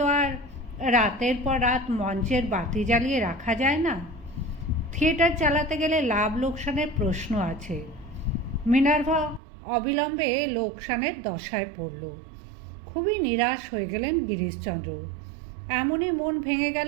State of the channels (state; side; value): drops out; left; at 9.4 s